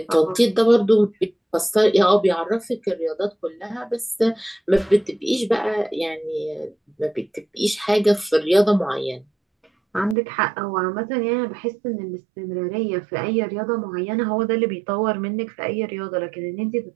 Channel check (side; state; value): left; drops out; at 10.2 s